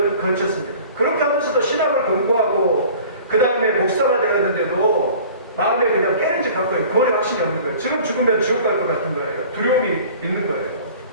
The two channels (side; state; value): both; inverted; correlation -0.46